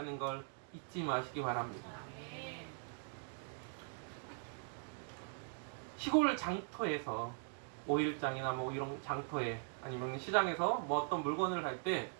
걸 잊지 마시기 바랍니다. 시골 장터에서 오일장이나 뭐 이런 장터에 아니면 시장에서 뭐 어떤 물건을 할 때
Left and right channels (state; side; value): silent; left; 50 dB below the other